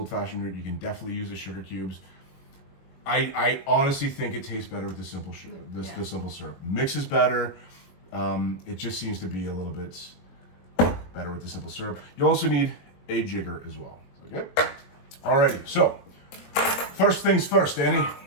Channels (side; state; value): right; late; 21 ms